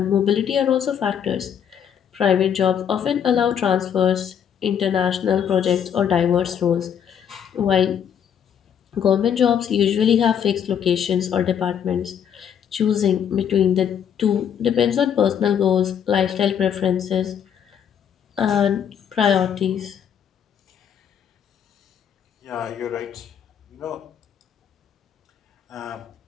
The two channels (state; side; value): quieter; right; 8.5 dB